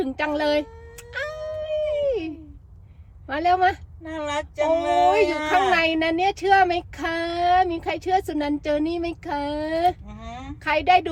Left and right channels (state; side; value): identical; both; correlation 1.00